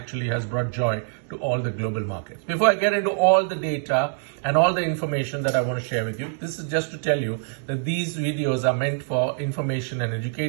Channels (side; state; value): left; silent; digital silence